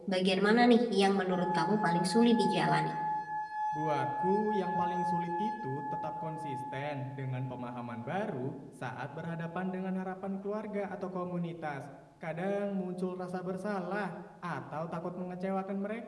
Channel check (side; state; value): both; identical; correlation 1.00